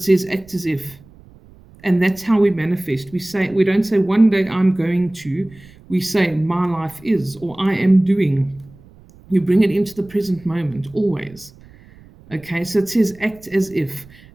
says act as if. And that's how we manifest. We don't say one day I'm going to. We say, my life is, or I am doing. You bring it into the present moment, always. Okay, so it says act as if,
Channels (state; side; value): noise; right; rumble, 24 dB below the sound